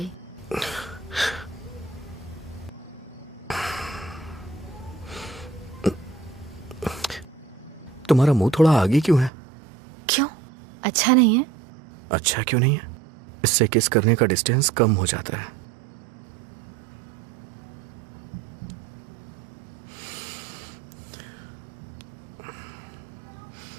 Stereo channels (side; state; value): left; drops out; at 9.3 s